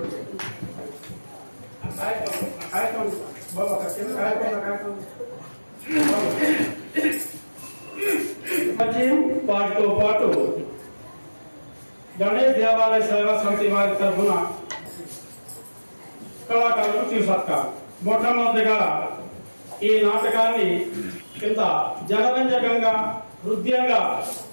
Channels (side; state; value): both; inverted; correlation -1.00